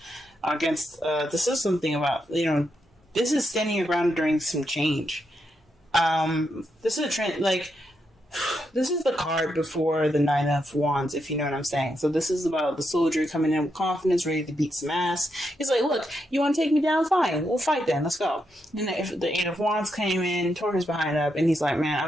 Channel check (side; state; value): both; normal; correlation 0.82